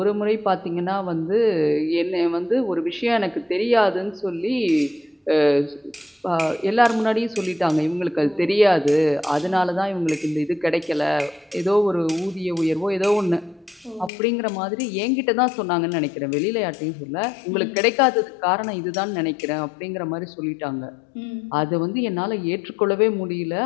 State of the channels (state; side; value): drops out; right; at 14.1 s